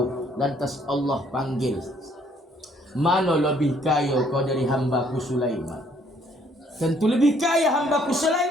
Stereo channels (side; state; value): both; normal; correlation 0.64